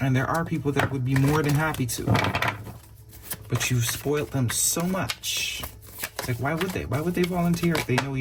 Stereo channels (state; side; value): identical; both; correlation 1.00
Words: And there are people that would be more than happy to. But you've spoiled them so much. It's like, why would they? Why would they volunteer if they know